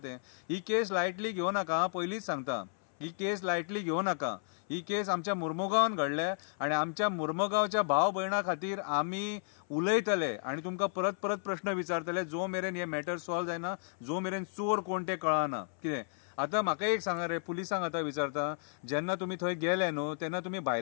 ही केस लायटली घेवं नाका, पयलींच सांगता. ही केस लायटली घेवं नाका. ही केस आमच्या मुर्मुगांवान घडल्या आनी आमच्या मुर्मुगांवच्या भाव भयणां खातीर आमी उलयतले आनी तुमकां परत परत प्रश्न विचारतले जो मेरेन हे मॅटर सॉल्व जायना, जो मेरेन चोर कोण ते कळना. कितें आतां म्हाका एक सांगा रे, पुलिसांक आतां विचारता, जेन्ना तुमी थंय गेले न्हू तेन्ना तुमी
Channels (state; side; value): silent; right; 56 dB below the other